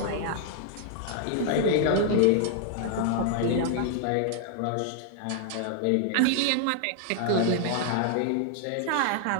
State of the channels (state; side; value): different; both; correlation 0.00